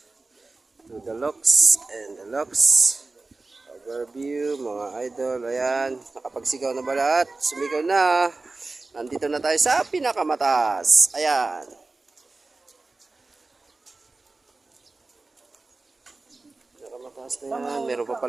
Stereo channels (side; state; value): left; quieter; 3.5 dB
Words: to the looks and the looks. Overview, mga idol. Ayan, nakapagsigaw na ba lahat? Sumigaw na. Nandito na tayo sa pinakamataas. Ayan. Taas na yan. Meron pa